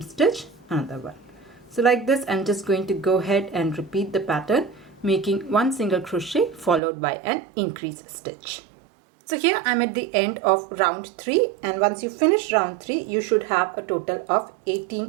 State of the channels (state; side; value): drops out; left; at 6.8 s